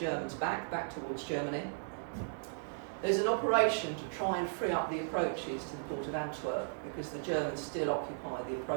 back towards Germany. There's an operation to try and free up the approaches to the port of Antwerp, because the Germans still occupy the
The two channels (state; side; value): silent; left; digital silence